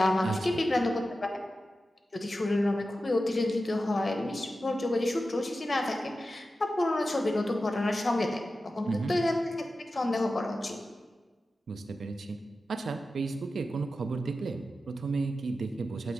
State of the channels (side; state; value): both; normal; correlation 0.93